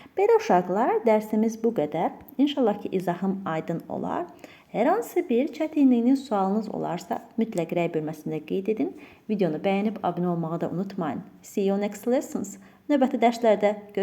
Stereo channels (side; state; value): both; identical; correlation 1.00